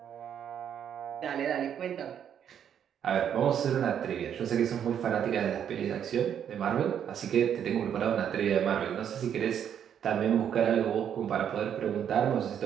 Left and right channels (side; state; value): left; quieter; 8.9 dB